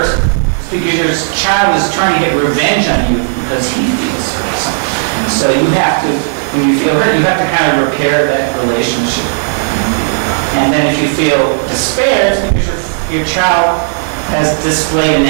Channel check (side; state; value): left; silent; digital silence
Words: it's because your child is trying to get revenge on you because he feels hurt. So you have to, when you feel hurt, you have to kind of repair that relationship. And then if you feel despair, it's because your child has displayed